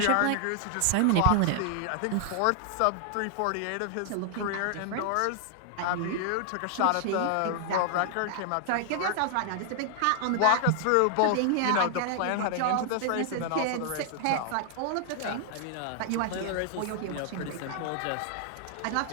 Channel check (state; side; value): different; both; correlation 0.00